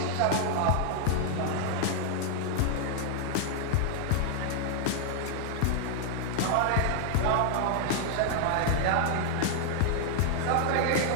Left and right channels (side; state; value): both; different; correlation 0.00